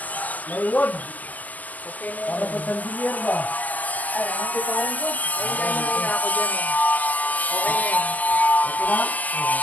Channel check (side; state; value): right; late; 0.080 ms